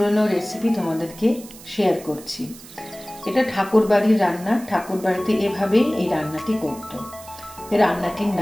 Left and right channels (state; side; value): noise; right; hiss, 18 dB below the sound